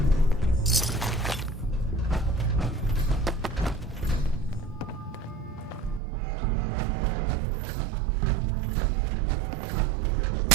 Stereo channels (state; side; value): drops out; left; at 6.0 s